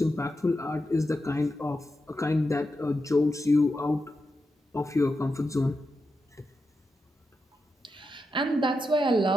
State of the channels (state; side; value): normal; both; correlation 0.88